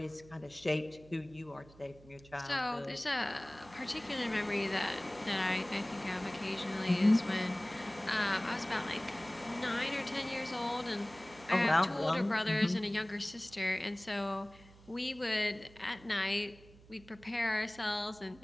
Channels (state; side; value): noise; right; hum, 23 dB below the sound